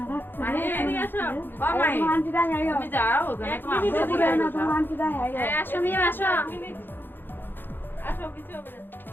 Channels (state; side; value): late; right; 0.097 ms